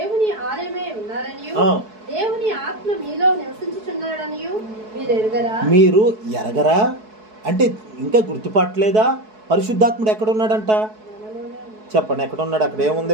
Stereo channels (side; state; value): left; late; 4.7 ms